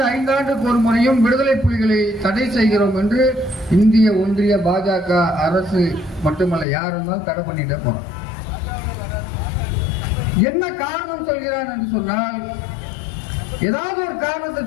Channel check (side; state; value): right; drops out; at 6.7 s